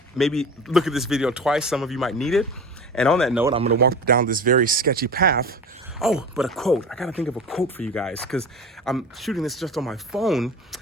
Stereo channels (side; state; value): both; normal; correlation 0.33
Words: Maybe look at this video twice. Some of you might need it. And on that note, I'm going to walk down this very sketchy path. Oh, but a quote. I got to think of a quote for you guys because I'm shooting this just on my phone.